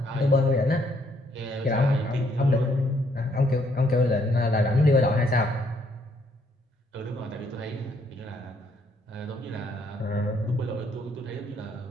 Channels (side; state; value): both; normal; correlation 0.69